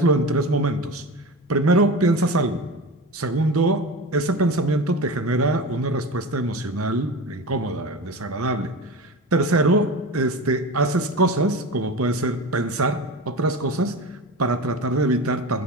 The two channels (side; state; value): both; normal; correlation 0.28